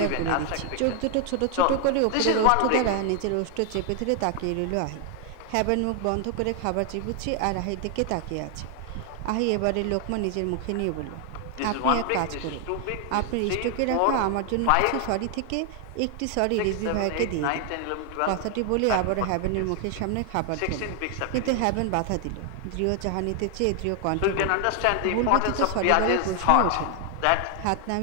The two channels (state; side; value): different; both; correlation 0.00